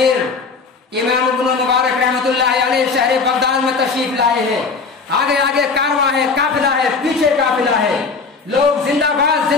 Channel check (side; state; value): right; quieter; 4.7 dB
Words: امام ابن مبارک رحمۃ اللہ علیہ شہر بغداد میں تشریف لائے ہیں۔ آگے آگے کارواں ہے، قافلہ ہے، پیچھے قافلہ ہے، لوگ زندہ